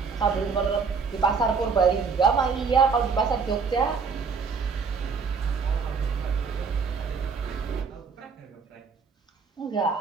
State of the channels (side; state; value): left; quieter; 5.3 dB